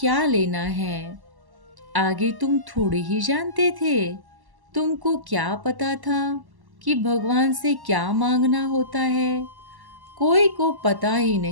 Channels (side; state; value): left; late; 1.1 ms